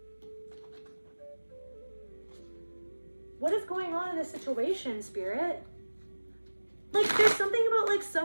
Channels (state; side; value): inverted; both; correlation -1.00